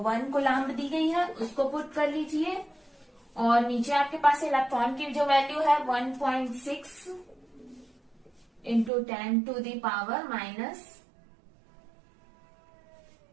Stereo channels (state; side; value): drops out; left; at 8.9 s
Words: 1 कूलम्ब दी गई है, उसको पुट कर लीजिए। और नीचे आपके पास इलेक्ट्रॉन की जो वैल्यू है 1.6 into 10 to the power